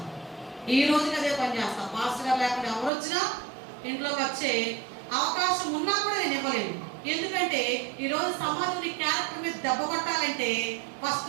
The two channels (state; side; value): drops out; left; at 2.9 s